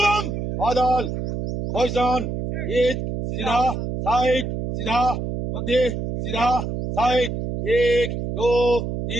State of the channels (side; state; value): right; noise; hum, 4 dB below the sound